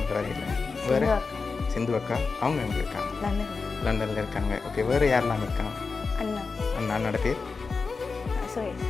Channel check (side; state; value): right; quieter; 4.6 dB